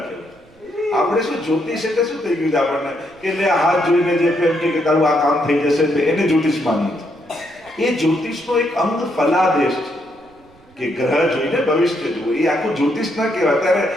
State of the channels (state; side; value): noise; right; rumble, 29 dB below the sound